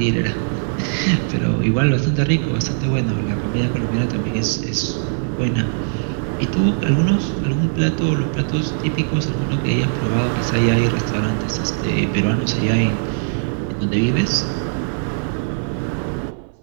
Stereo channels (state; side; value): silent; left; 65 dB below the other